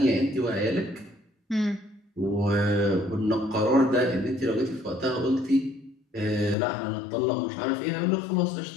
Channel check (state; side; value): drops out; right; at 6.6 s